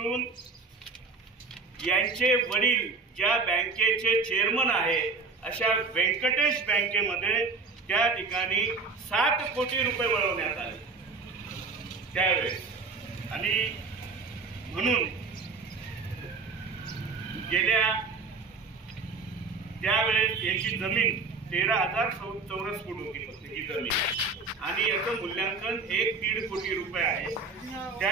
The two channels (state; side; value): quieter; left; 4.2 dB